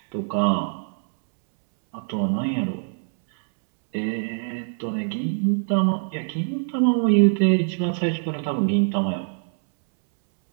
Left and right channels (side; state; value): left; silent; 63 dB below the other